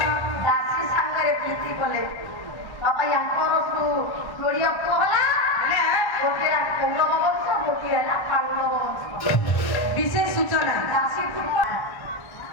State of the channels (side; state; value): right; late; 1.1 ms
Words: দাসী সাঙ্গরে প্রীতি কলে বাবা ইয়াঙ্কর জড়িয়া পহলা গোটে কৌরব বংশ গোটে ହେଲା পাণ্ডব বংশ বিশেষ সূচনা দাসী